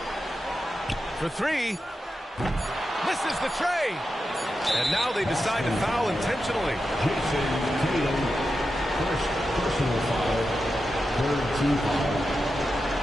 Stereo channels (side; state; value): both; normal; correlation 0.90